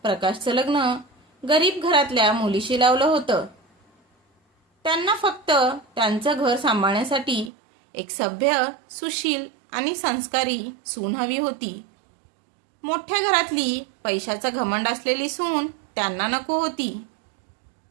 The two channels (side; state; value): left; drops out; at 7.5 s